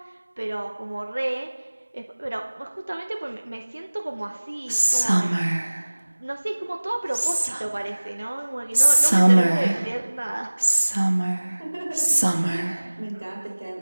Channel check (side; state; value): both; inverted; correlation -1.00